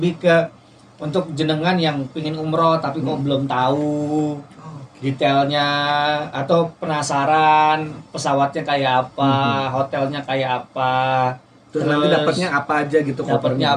ke untuk jenengan yang pingin umroh tapi kok belum tahu detailnya atau penasaran pesawatnya kayak apa, hotelnya kayak apa, Terus nanti dapatnya apa aja gitu dapatnya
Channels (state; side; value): identical; both; correlation 1.00